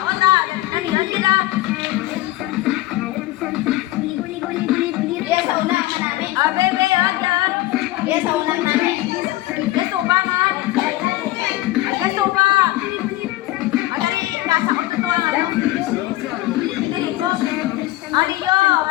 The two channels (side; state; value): right; quieter; 16.6 dB